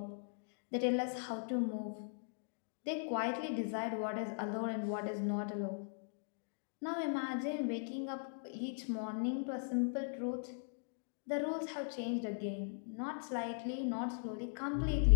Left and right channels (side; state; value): right; silent; digital silence